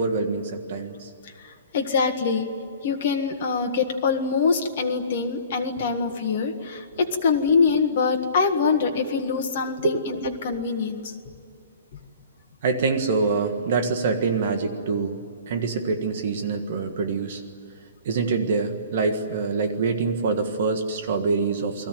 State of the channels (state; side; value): inverted; both; correlation -0.47